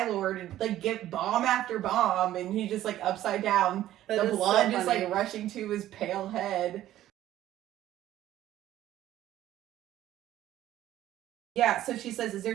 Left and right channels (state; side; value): quieter; left; 13.4 dB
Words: Lord and like give bomb after bomb, and he's just like upside down. That The is blood so just funny. like rushing to his pale head. Yeah, so she says, is there